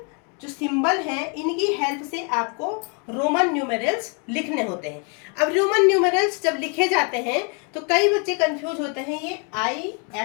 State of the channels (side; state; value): right; quieter; 36.9 dB